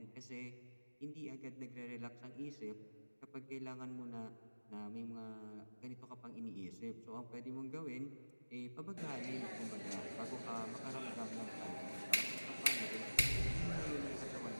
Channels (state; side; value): inverted; both; correlation -1.00